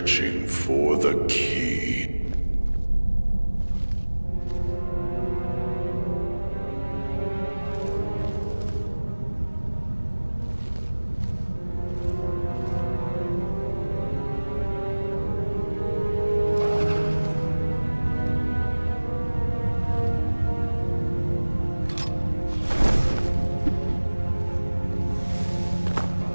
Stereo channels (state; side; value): inverted; both; correlation -1.00